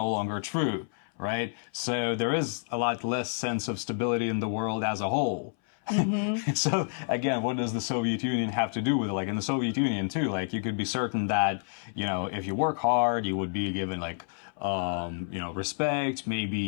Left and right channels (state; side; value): silent; right; 59 dB below the other